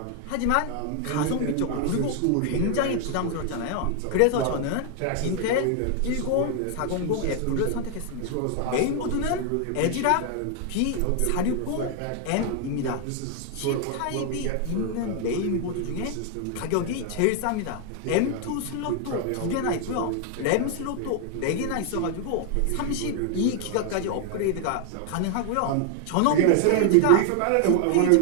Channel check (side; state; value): both; different; correlation 0.00